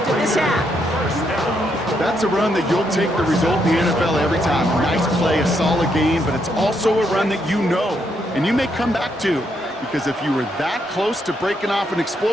of this half. That's a run that you'll take the result in the NFL every time. A nice play, a solid game, but it's also a run that you know and you may come back to, because if you were that close to breaking off an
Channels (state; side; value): normal; both; correlation 0.77